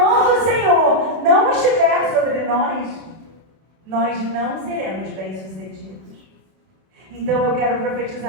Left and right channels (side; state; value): left; late; 32 ms